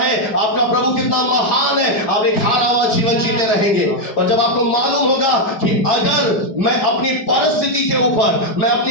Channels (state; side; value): late; right; 4.6 ms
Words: आपका प्रभु कितना महान है, आप एक हारा हुआ जीवन जीते रहेंगे। और जब आपको मालूम होगा कि अगर मैं अपनी परिस्थिति के ऊपर, मैं